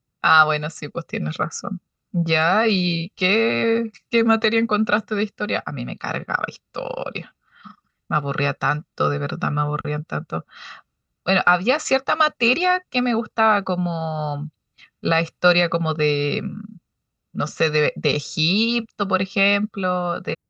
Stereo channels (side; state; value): both; identical; correlation 1.00